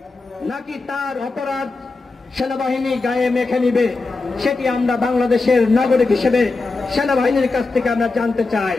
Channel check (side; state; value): right; quieter; 3.7 dB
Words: নাকি তার অপরাধ সেনাবাহিনী গায়ে মেখে নিবে? সেটি আমরা বাংলাদেশের নাগরিক হিসেবে সেনাবাহিনীর কাছ থেকে আমরা জানতে চাই।